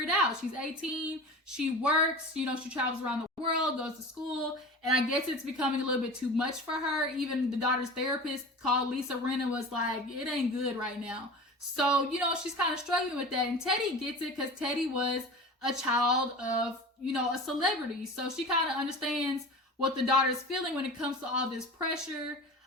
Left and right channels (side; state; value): both; normal; correlation 0.34